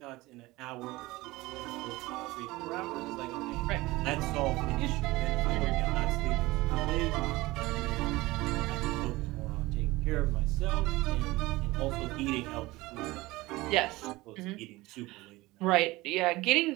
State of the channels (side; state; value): left; quieter; 20.1 dB